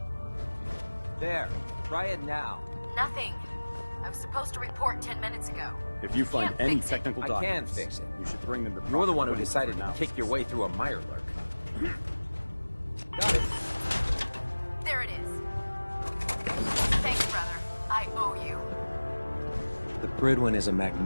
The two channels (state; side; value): inverted; both; correlation -1.00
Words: There. Try it now. Nothing. I was supposed to report 10 minutes ago. If you find can't any fix it. technical I documents, can fix it. you should bring them to You're the one who proper decided to analysis. kick your way through a Mirelurk. Got it. There it is. Thanks, brother. I owe you. The Prydwen is a